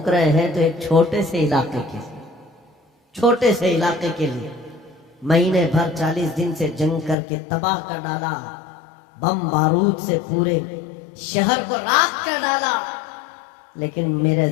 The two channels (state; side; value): drops out; right; at 7.2 s